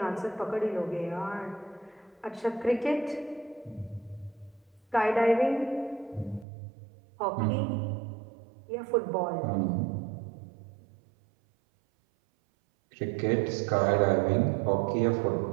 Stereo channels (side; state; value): left; drops out; at 6.5 s